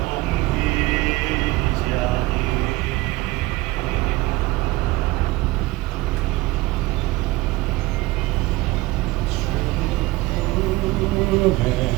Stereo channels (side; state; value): left; quieter; 19.9 dB